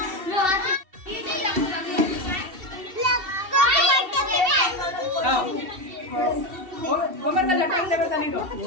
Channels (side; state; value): left; late; 2.7 ms